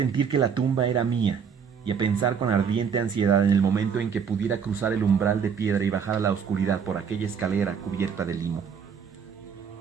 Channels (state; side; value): quieter; left; 6.8 dB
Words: que la tumba era mía, y a pensar con ardiente ansiedad en el momento en que pudiera cruzar el umbral de piedra y bajar a la oscuridad por aquella escalera cubierta de limo.